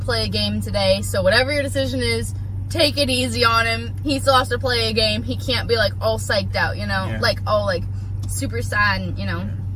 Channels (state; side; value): identical; both; correlation 1.00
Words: a game today, so whatever your decision is, take it easy on him. He still has to play a game. He can't be like all psyched out, you know? Yeah. Like all like super sad, and, you know? Yeah.